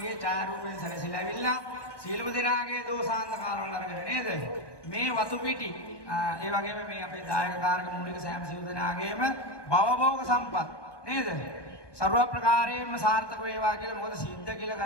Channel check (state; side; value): late; right; 1.2 ms